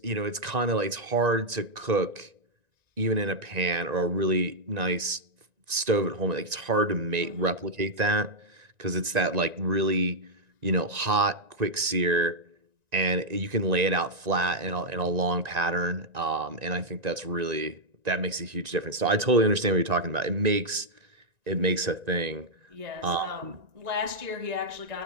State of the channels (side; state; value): left; late; 1.9 ms